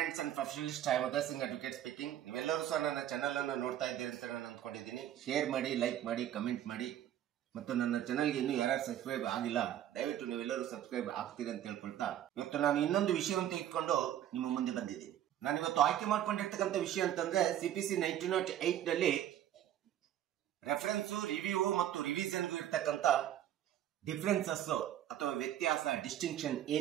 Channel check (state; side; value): quieter; left; 11.5 dB